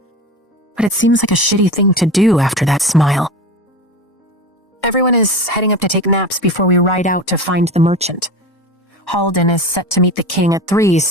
But it seems like a shitty thing to do after that smile. Everyone is heading up to take naps before we ride out to find the merchant. Halden is set to meet the king at 3,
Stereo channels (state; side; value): normal; both; correlation 0.29